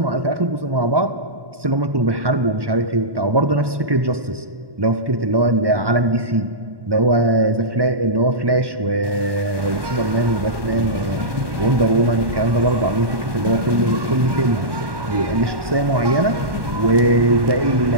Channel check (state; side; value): late; left; 1.2 ms